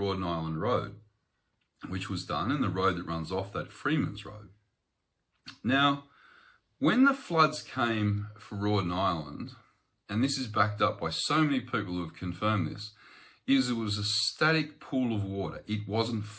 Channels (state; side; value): identical; both; correlation 1.00